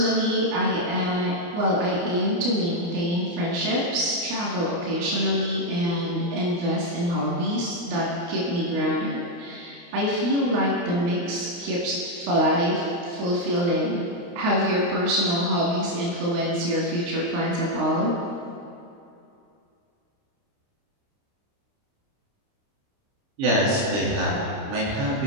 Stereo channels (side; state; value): left; late; 29 ms